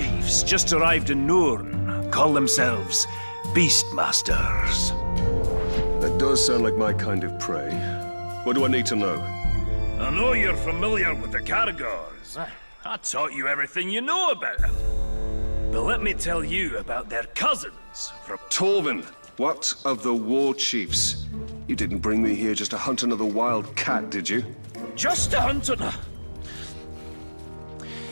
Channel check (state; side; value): inverted; both; correlation -1.00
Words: just arrived in Nurn. Call themselves Beastmasters. That does sound like my kind of prey. What do I need to know? I know you're familiar with the Caragors. I taught you everything you know about them. But let me tell you about their cousins from... Trovin, what of the Warchiefs? You didn't bring me here just to hunt another wild cat, did you? Just to hunt another...